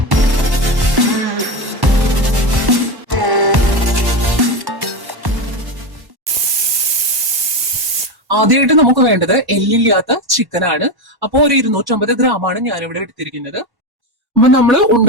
ആദ്യമായിട്ട് നമുക്ക് വേണ്ടത് എല്ലില്ലാത്ത ചിക്കനാണ്. അപ്പോൾ ഒരു 250 ഗ്രാമാണ് ഞാനിവിടെ എടുത്തിരിക്കുന്നത്. അപ്പൊ നമ്മൾ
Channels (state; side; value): late; left; 1.1 ms